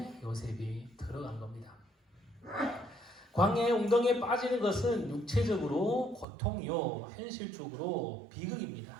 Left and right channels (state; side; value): drops out; left; at 6.2 s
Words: 요셉이 들어간 겁니다. 광야의 웅덩이에 빠지는 것은 육체적으로 고통이요, 현실적으로 비극입니다.